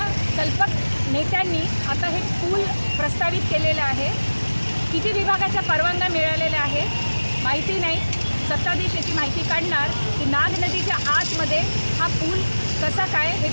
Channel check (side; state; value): both; inverted; correlation -1.00